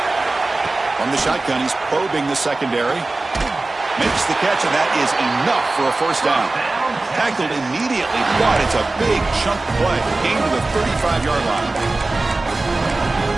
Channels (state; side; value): quieter; left; 3.2 dB